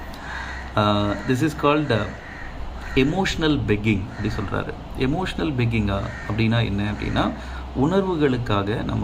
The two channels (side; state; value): both; identical; correlation 1.00